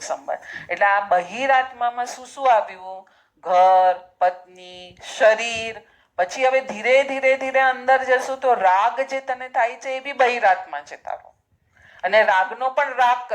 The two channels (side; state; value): both; identical; correlation 1.00